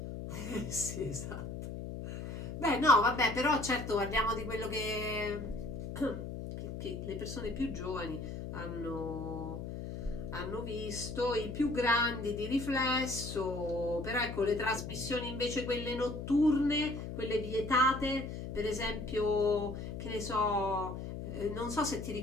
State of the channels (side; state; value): left; noise; hum, 7 dB below the sound